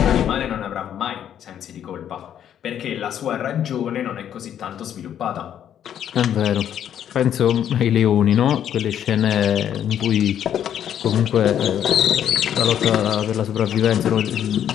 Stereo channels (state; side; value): quieter; right; 9.9 dB